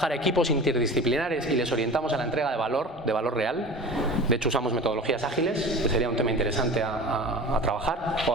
a equipos interdisciplinares y les orientamos a la entrega de valor real. De hecho, usamos metodologías ágiles, que sería un tema interesante a trabajar o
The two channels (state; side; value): normal; both; correlation 0.36